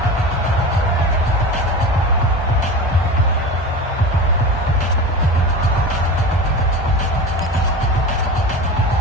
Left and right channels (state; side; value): normal; both; correlation 0.30